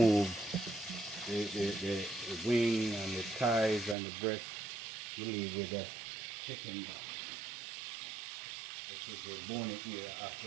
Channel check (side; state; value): left; drops out; at 4.0 s